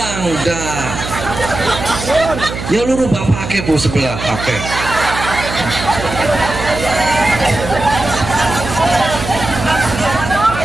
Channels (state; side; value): noise; right; hum, 7 dB below the sound